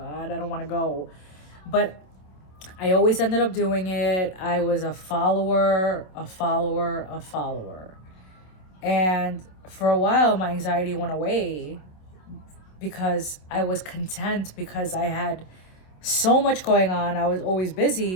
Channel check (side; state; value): right; late; 27 ms